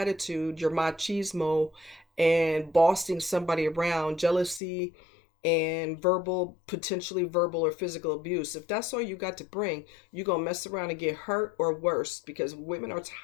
your machismo, and bossing somebody around, jealousy, and potentially verbal or physical abuse? If that's all you got to bring, you're going to mess around and get hurt or worse, because women are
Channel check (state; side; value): drops out; right; at 4.6 s